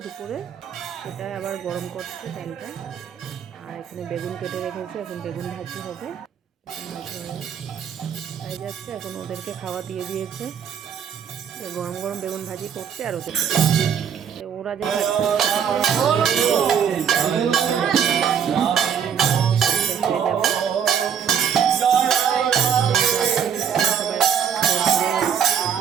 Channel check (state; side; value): quieter; left; 7.9 dB